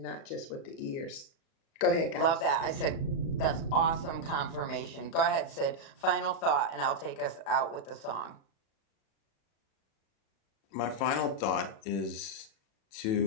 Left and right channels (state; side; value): late; right; 36 ms